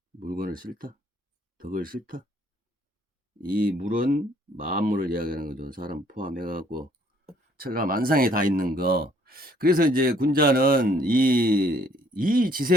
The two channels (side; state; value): both; normal; correlation 0.63